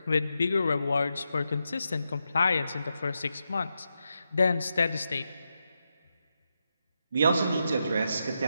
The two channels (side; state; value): both; inverted; correlation -0.86